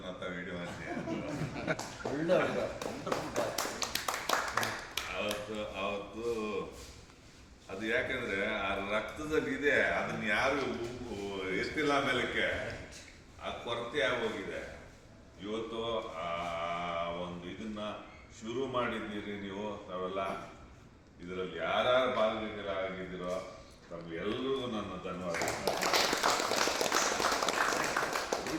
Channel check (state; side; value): identical; both; correlation 1.00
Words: ಅಂತ ವಿಡಿಯೋ ಅವತ್ತು ಅದು ಯಾಕಂದ್ರೆ ಆ ರಕ್ತದಲ್ಲಿ ಇದೆ, ಅದನ್ನ ಯಾರು ಎಷ್ಟಿಲ್ಲ ಮೇಲಕ್ಕೆ ಆ ಕೊರತೆ ಆಗೋಗಿದೆ. ಇವತ್ತು ಆ ಒಂದು ಇದನ್ನ ಶುರು ಮಾಡಿದ್ದೀರಿ ನೀವು, ತಾವೆಲ್ಲ ಇದರಲ್ಲಿ ಯಾರ್ಯಾರು ಭಾಗವಹಿಸಿರೋ ತಮ್ಗೆಲ್ಲರಿಗೂ ನನ್ನ ಧನ್ಯವಾದ.